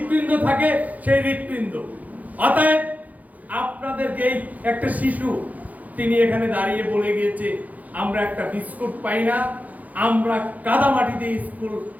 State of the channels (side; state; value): left; late; 0.078 ms